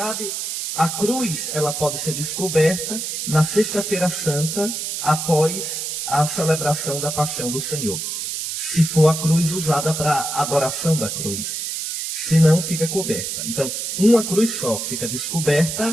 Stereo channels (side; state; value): right; noise; hiss, 4 dB below the sound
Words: a cruz ela pode ser descoberta na Sexta-feira Santa, após a celebração da Paixão do Senhor. Se for a cruz usada para adoração da cruz. Se não, fica coberta. Então, uma cruz só fica